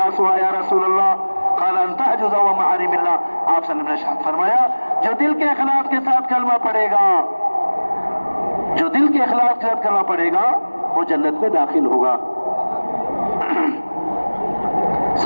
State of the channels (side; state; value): both; inverted; correlation -1.00